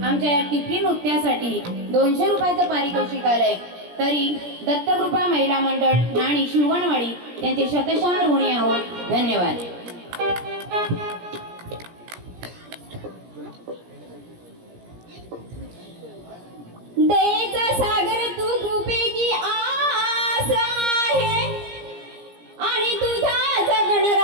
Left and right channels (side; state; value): left; late; 17 ms